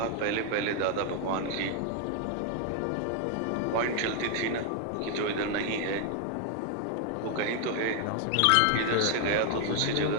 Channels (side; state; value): both; different; correlation 0.00